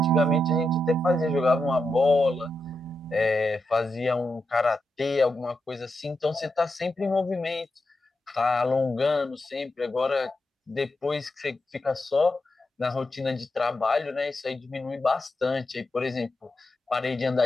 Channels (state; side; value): normal; both; correlation 0.87